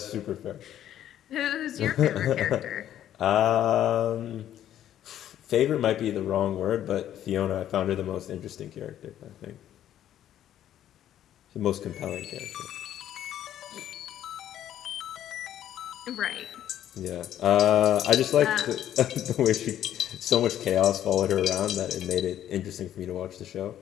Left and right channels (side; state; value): right; quieter; 11.4 dB